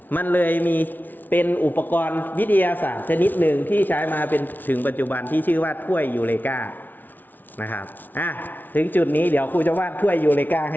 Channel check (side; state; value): right; late; 0.086 ms